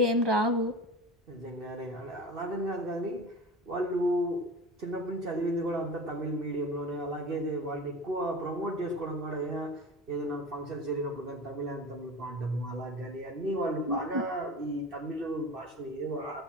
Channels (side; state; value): both; normal; correlation 0.33